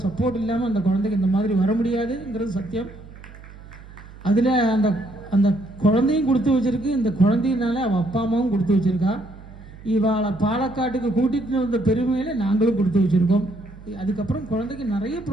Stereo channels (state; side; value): noise; right; hum, 18 dB below the sound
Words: சப்போர்ட் இல்லாமல் அந்த குழந்தைக்கு இந்த மாதிரி வர முடியாதுங்கிறது சத்தியம். அதில் அந்த குழந்தையும் கொடுத்து வச்சிருக்கு. இந்த குழந்தையினால அவள் அப்பா அம்மாவும் கொடுத்து வச்சிருக்கா. இவாளை பாலக்காட்டுக்கு கூட்டிகிட்டு வந்த பெருமையில் நாங்களும் கொடுத்து வச்சுருக்கோம். அதுக்கப்புறம் குழந்தைக்கு நிறைய